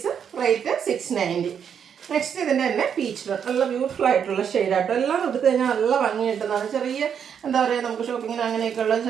റേറ്റ് 690. നെക്സ്റ്റ് ഇതിൻ്റെ തന്നെ പീച്ച് ടോൺ. നല്ല ബ്യൂട്ടിഫുൾ ആയിട്ടുള്ള ഷെയ്ഡാട്ടോ. എല്ലാം എടുത്തു കഴിഞ്ഞാൽ നല്ല ഭംഗി കിട്ടുന്നതാണ്. ചെറിയ എന്താ പറയുക, നമുക്ക് ഷോപ്പിങ്ങിന് അങ്ങനെയൊക്കെയുള്ള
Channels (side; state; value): left; quieter; 7.8 dB